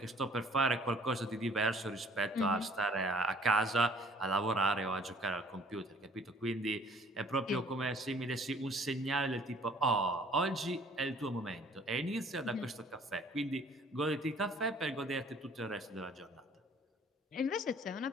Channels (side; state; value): both; normal; correlation 0.55